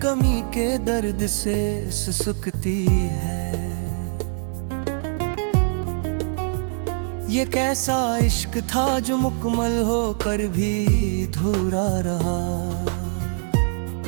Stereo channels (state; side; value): silent; left; digital silence